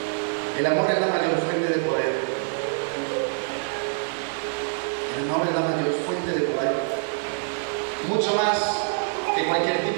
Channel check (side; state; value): left; silent; digital silence